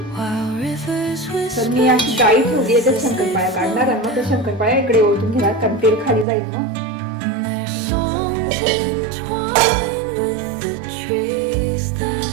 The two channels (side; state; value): left; drops out; at 6.2 s